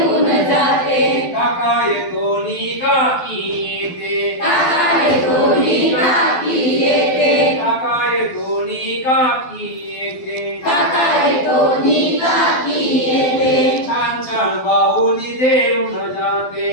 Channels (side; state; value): right; late; 12 ms